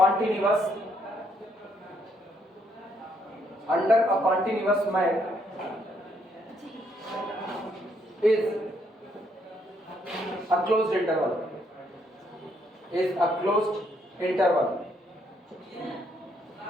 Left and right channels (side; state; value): both; normal; correlation 0.72